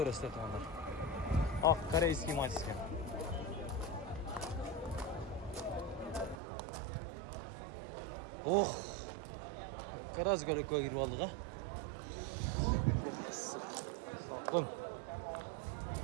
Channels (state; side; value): drops out; left; at 6.4 s